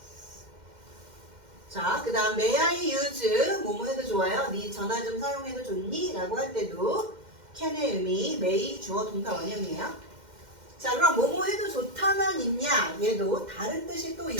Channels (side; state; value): left; late; 2.1 ms